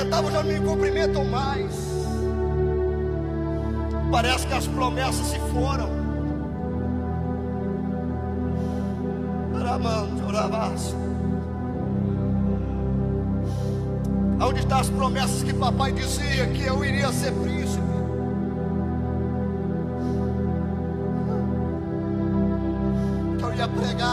já não me cumprimentam mais. Parece que as promessas se foram. Onde estão as promessas que papai dizia que eu iria ser príncipe? Que eu ia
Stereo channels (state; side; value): identical; both; correlation 1.00